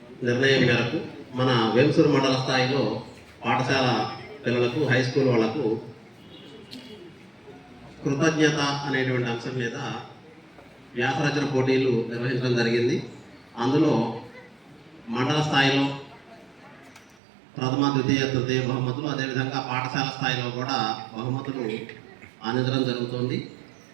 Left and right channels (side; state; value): left; drops out; at 17.2 s